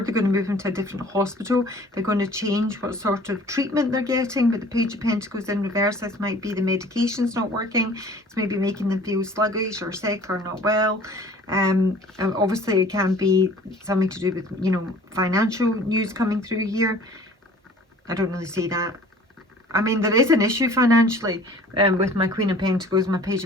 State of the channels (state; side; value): normal; both; correlation 0.49